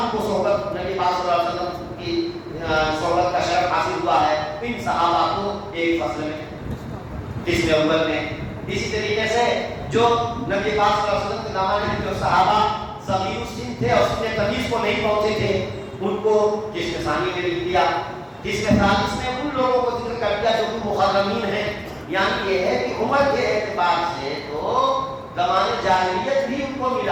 کو صحبت نبی پاک صلی اللہ علیہ وسلم کی صحبت کا شرف حاصل ہوا ہے. ان صحابہ کو ایک فصل میں قسم اول میں. اسی طریقے سے جو نبی پاک صلی اللہ علیہ وسلم کے زمانے میں جو صحابہ صغیر السن تھے اور سن تمیز کو نہیں پہنچے تھے ان کو قسم ثانی میں لکھ دیا. قسم ثالث میں ان لوگوں کو ذکر کر دیا جو کہ مخرمین ہیں. یعنی یہ ہے کہ عمر کے اعتبار سے تو زمانے جاہلیت بھی ان کو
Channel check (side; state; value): both; identical; correlation 1.00